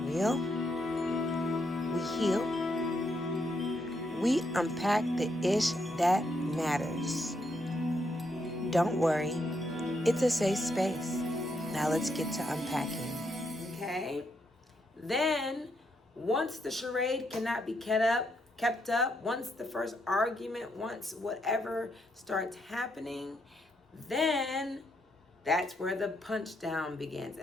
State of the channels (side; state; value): both; normal; correlation 0.78